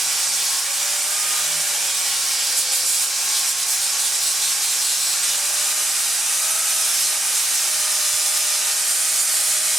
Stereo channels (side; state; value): both; normal; correlation 0.80